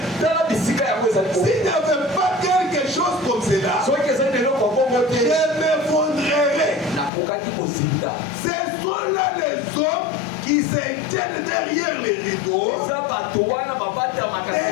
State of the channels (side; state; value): right; drops out; at 7.1 s